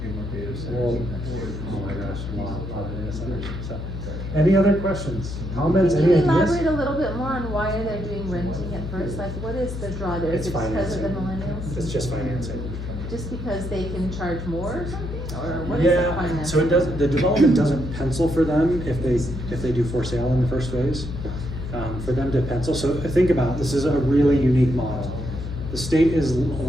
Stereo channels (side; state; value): left; noise; hum, 6 dB below the sound